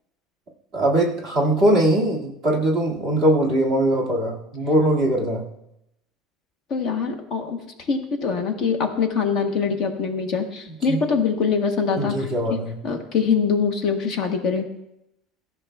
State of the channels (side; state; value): both; normal; correlation 0.31